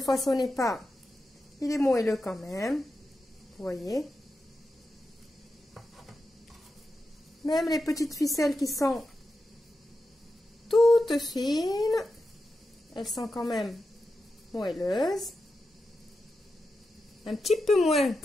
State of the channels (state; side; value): normal; both; correlation 0.90